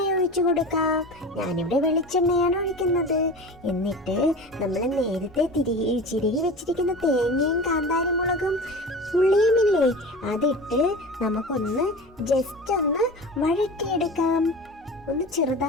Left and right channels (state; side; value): normal; both; correlation 0.33